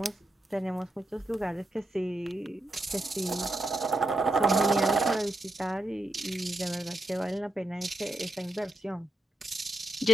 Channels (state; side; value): normal; both; correlation 0.84